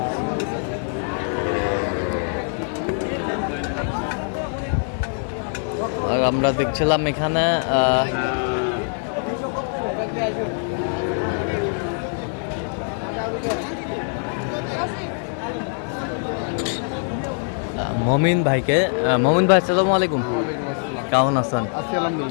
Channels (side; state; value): right; silent; 56 dB below the other